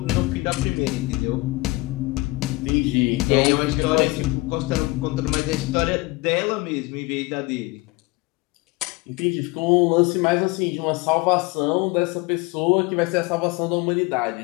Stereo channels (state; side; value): quieter; right; 22.8 dB